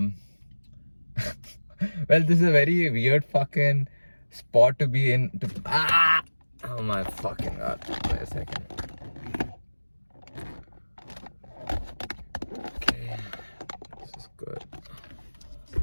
this is a very weird fucking spot to be in. Oh my fucking god. Wait a second. Okay, this is good.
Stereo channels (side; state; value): both; inverted; correlation -1.00